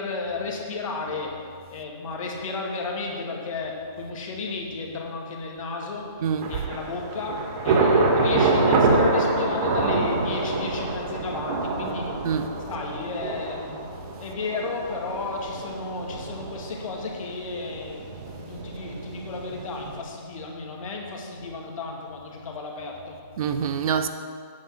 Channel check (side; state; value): both; inverted; correlation -0.40